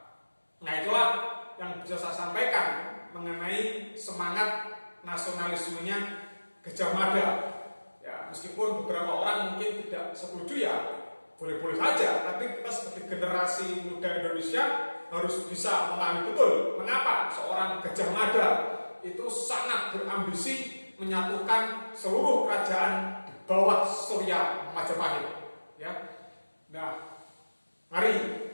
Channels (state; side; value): inverted; both; correlation -1.00